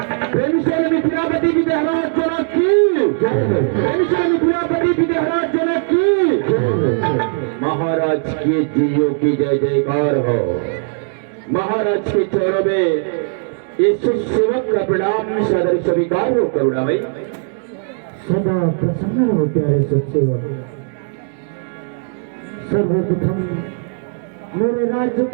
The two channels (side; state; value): left; silent; 60 dB below the other